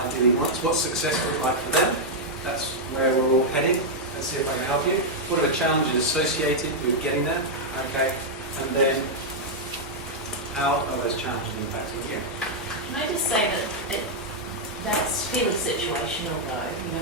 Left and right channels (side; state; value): both; normal; correlation -0.03